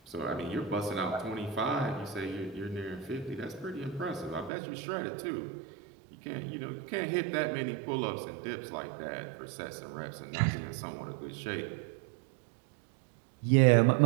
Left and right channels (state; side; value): drops out; left; at 4.5 s